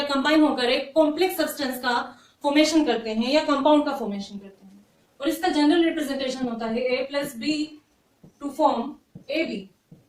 कंबाइन होकर एक कॉम्प्लेक्स सब्सटेंस का फॉर्मेशन करते हैं या कंपाउंड का फॉर्मेशन करते हैं, और इसका जनरल रिप्रेजेंटेशन होता है A+B टू फॉर्म AB।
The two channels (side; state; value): both; identical; correlation 1.00